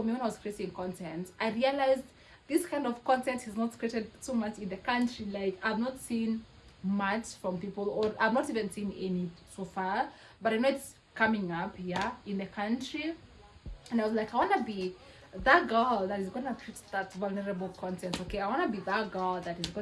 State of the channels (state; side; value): identical; both; correlation 1.00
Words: me, when I was creating content, I realized this kind of content is not created so much in the country. Like, I've not seen much from people, or I've not even seen any so far, but I know it's coming up here in the country. And I was like, I want to be that girl that is going to create that vulnerable content, okay? I want to be that girl that is